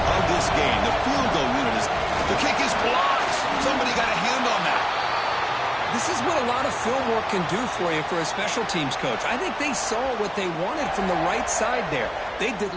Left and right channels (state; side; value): identical; both; correlation 1.00